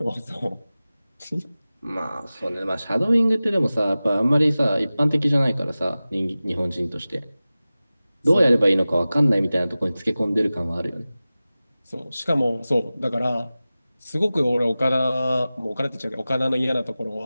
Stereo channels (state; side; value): inverted; both; correlation -0.97